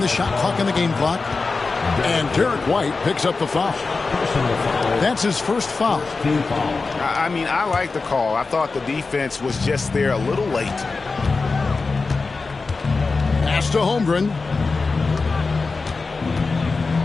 shot clock and the game clock. And Derek White picks up the foul. That's his first foul. I mean, I like the call. I thought the defense was just there a little late. Pass to Holmgren.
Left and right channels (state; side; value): quieter; right; 4.1 dB